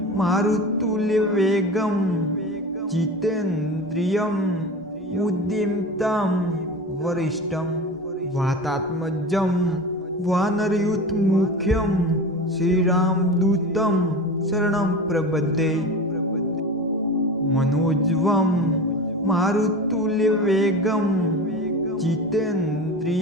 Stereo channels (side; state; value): both; normal; correlation 0.31